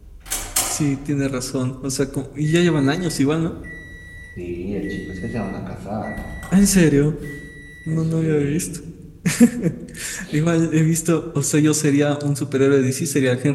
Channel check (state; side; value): identical; both; correlation 1.00